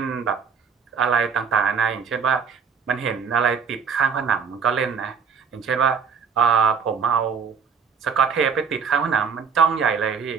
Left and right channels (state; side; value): quieter; left; 6.3 dB